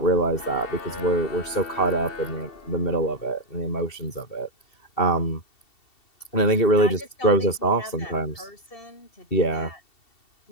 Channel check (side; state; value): right; late; 2.7 ms